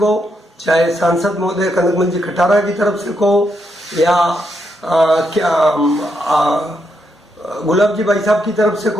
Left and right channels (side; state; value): both; normal; correlation 0.80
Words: चाहे सांसद महोदय कनकमल जी खटारा की तरफ से कहो या गुलाब जी भाई साहब की तरफ से